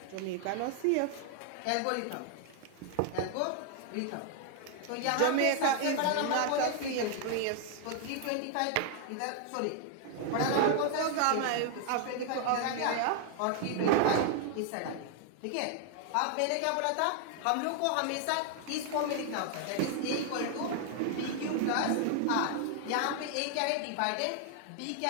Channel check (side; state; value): both; different; correlation 0.00